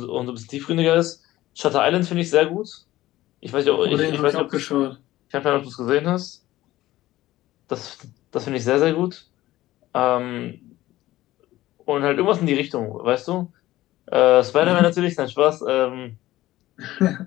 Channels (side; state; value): right; quieter; 16.1 dB